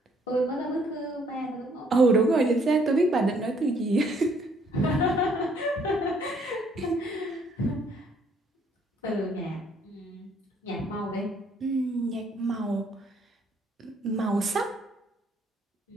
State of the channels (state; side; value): normal; both; correlation 0.65